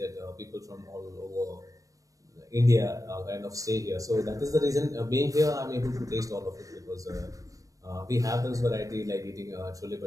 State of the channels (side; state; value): left; late; 0.16 ms